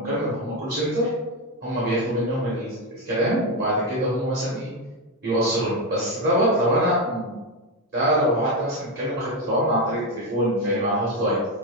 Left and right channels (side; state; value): both; normal; correlation 0.09